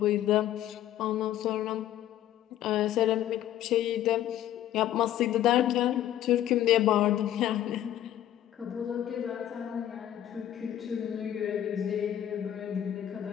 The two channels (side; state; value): right; quieter; 11.9 dB